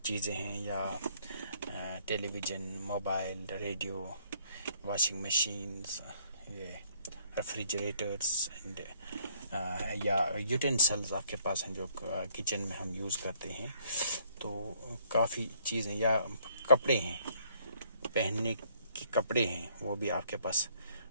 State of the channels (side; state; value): both; inverted; correlation -0.65